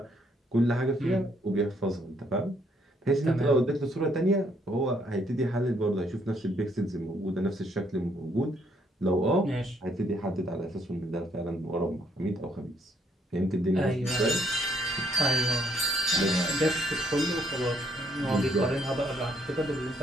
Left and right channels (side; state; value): both; normal; correlation 0.69